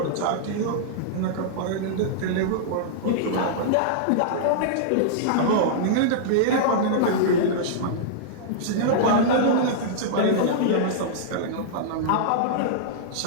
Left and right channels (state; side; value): different; both; correlation -0.02